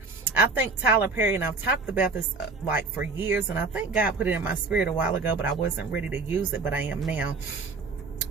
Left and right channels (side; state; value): left; quieter; 4.0 dB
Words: I think Tyler Perry, and I've talked about this like for years, and I think God put it in my spirit a while ago, but I wasn't ready to use it, but I am now.